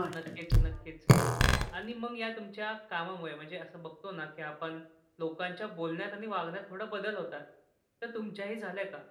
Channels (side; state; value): both; identical; correlation 1.00